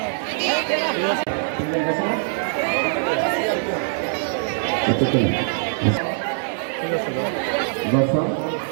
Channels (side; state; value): left; silent; digital silence